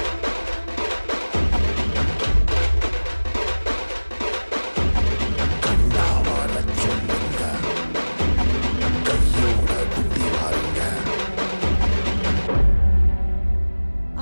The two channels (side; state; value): both; inverted; correlation -1.00